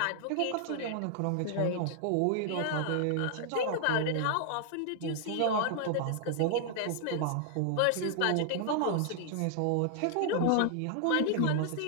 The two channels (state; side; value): different; both; correlation 0.00